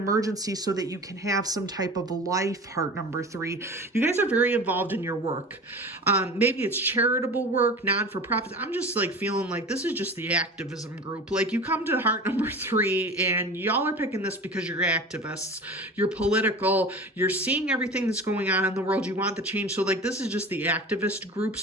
so that you can have some type of life, heart number 3. You guys are very involved in your work. Maybe it's charitable work, non-for-profit. I'm just like feeling like this is just the activism group. Like, you come to heart number 3 and y'all are picking this because you're activists, you're political, you're seeing everything that's going on in the world, you want the change. So like, this is just the activist group.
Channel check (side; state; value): both; normal; correlation 0.35